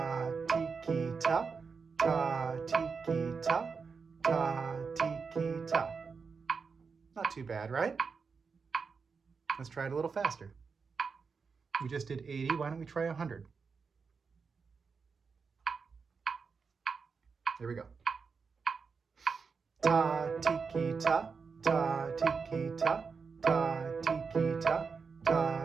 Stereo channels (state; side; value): quieter; left; 5.2 dB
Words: ti, ki, ta. Ta, ti, ki, ta. Ta, ti, ki, ta. Not too bad, right? Let's try it a little faster. We just did 80. Why don't we try 100? There we go. Ta, ti, ki, ta. Ta, ti, ki, ta. Ta, ti, ki, ta.